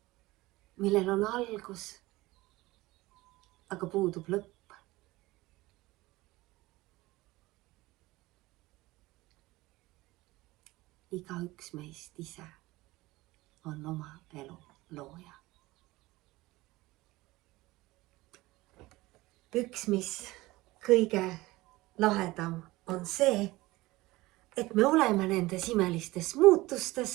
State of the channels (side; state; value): left; quieter; 19.6 dB